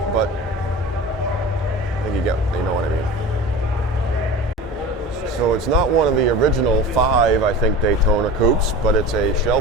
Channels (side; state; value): both; normal; correlation 0.35